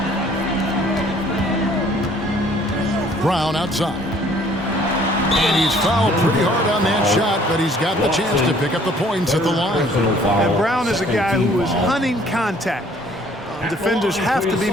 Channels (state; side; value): normal; both; correlation 0.58